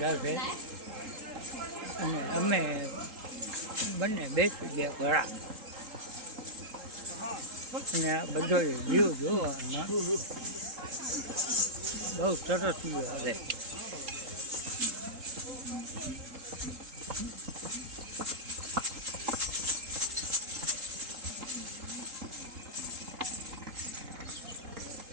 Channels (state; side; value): late; left; 3.8 ms